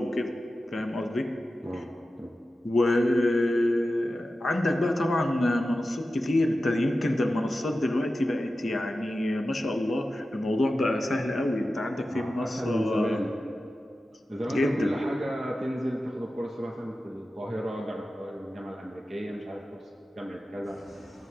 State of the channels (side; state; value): both; normal; correlation 0.93